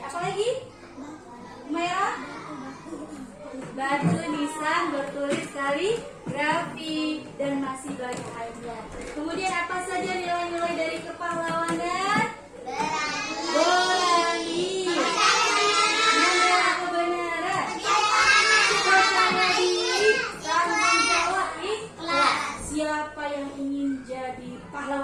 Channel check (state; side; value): identical; both; correlation 1.00